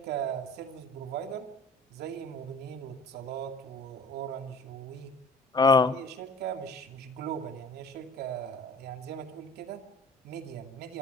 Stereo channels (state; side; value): normal; both; correlation 0.45